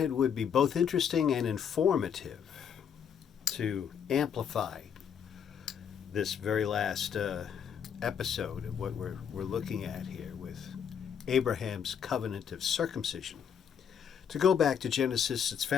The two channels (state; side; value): quieter; right; 7.8 dB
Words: would be both interesting and informative to amplify this very last episode of what we're looking at here with Abraham's covenant of circumcision. To go back to Genesis, it's